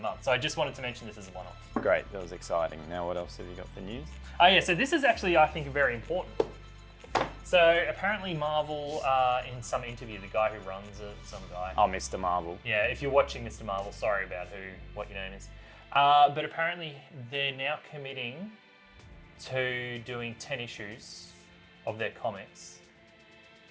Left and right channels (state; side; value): identical; both; correlation 1.00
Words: So I just wanted to mention this as a one-off. Great, that was exciting. Now what else have you got for news? Oh yeah, so this is actually, I think, very important. So apparently Marvel, in some interview, the guy who runs it, some guy. Oh, Mr. Marvel. Yeah, if you're watching Mr. Marvel, sorry about what your name is. But apparently they're now committing to doing 10 issues of their comics